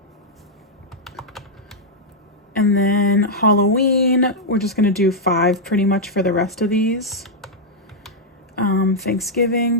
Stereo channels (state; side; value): normal; both; correlation -0.04